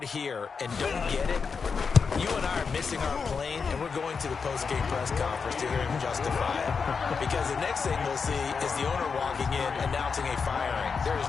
here and don't get it, you and I are missing our plane, and we're going to the post-game press conference to hear him justify it. Because the next thing we'll see is the owner walking in announcing a firing. There is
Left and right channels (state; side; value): quieter; right; 5.5 dB